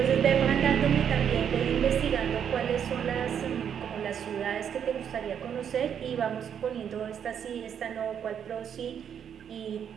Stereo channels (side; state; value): left; quieter; 8.4 dB